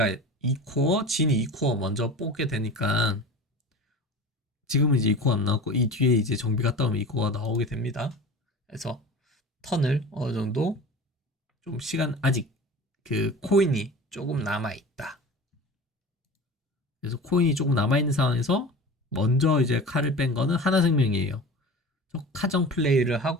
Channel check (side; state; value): both; normal; correlation 0.36